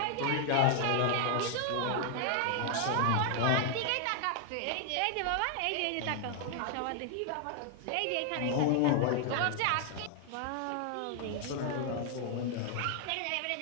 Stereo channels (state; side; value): different; both; correlation 0.00